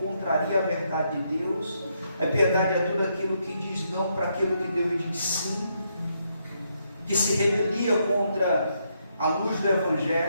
contraria a verdade de Deus, a impiedade é tudo aquilo que diz não para aquilo que Deus diz sim, que se rebelia contra a luz do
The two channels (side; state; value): both; inverted; correlation -0.77